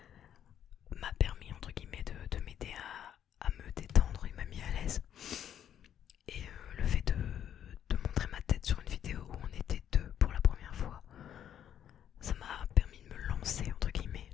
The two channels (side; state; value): right; quieter; 9.8 dB